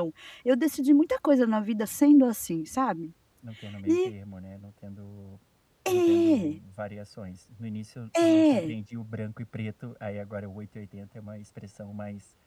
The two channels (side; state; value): both; identical; correlation 1.00